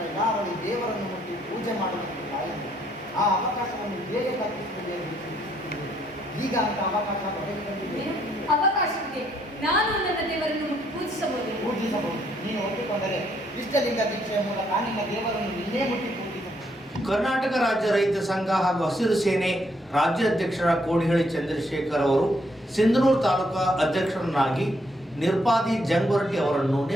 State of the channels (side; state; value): both; normal; correlation 0.71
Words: ಇಲ್ಲ, ಅವಳು ದೇವರನ್ನು ಮುಟ್ಟಿ ಪೂಜೆ ಮಾಡುವುದಕ್ಕೆ ಬಾಯಿಲ್ಲ. ಆ ಅವಕಾಶವನ್ನು ಹೇಗೆ ಕಲ್ಪಿಸುತ್ತದೆ? ಈಗ ಅಂತ ಅವಕಾಶ ಒದಗಿ ಬಂದಿದೆ. ಅವಕಾಶವಿದೆ. ನಾನು ನನ್ನ ದೇವರನ್ನು ಪೂಜಿಸಬಹುದು. ನೀನು ಒಪ್ಪಿಕೊಂಡರೆ ಇಷ್ಟಲಿಂಗ ದೀಕ್ಷೆಯ ಮೂಲಕ ನಿನ್ನ ದೇವರನ್ನು ನಿನ್ನೇ ಮುಟ್ಟಿ ಪೂಜಿಸಬಹುದು. ಕರ್ನಾಟಕ ರಾಜ್ಯ ರೈತ ಸಂಘ ಹಾಗೂ ಹಸಿರು ಸೇನೆ ರಾಜ್ಯಾಧ್ಯಕ್ಷರ ಕೋಡಿಹಳ್ಳಿ ಚಂದ್ರಶೇಖರ್ ಅವರು ಸಿಂಧನೂರು ತಾಲೂಕಾ ಅಧ್ಯಕ್ಷರನ್ನಾಗಿ ನಿರ್ಪಾದಿ ಜಂಗ್ವರಟಿ ಅವರನ್ನು